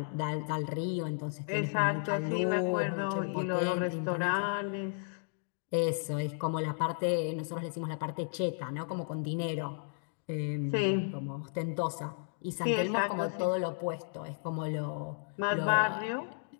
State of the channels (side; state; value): right; silent; 55 dB below the other